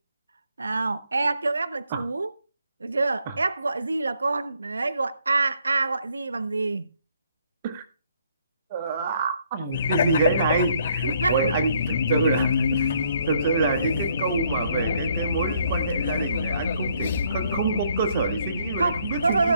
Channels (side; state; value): both; inverted; correlation -0.68